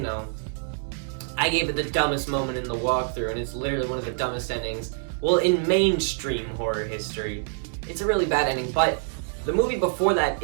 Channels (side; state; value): left; silent; digital silence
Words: I gave it the dumbest moment in the walkthrough, and it's literally one of the dumbest endings, well, in mainstream horror history. It's a really bad ending, but the movie before that